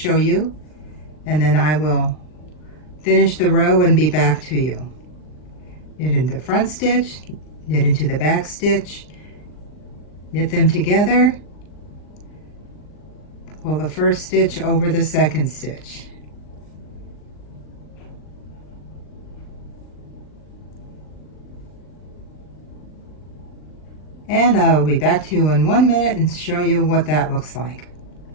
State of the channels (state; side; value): late; right; 39 ms